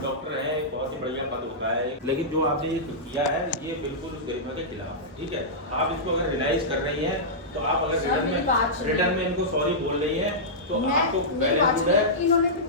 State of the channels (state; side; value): normal; both; correlation -0.13